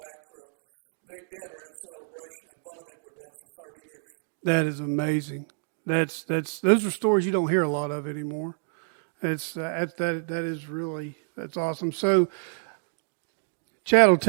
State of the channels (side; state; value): left; silent; digital silence